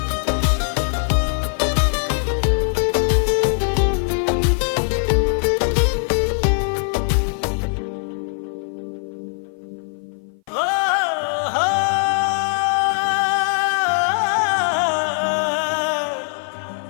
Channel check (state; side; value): silent; right; 57 dB below the other